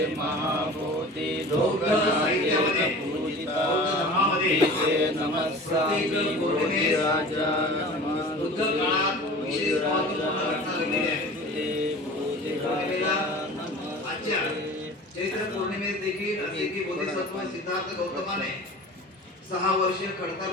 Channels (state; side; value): normal; both; correlation 0.40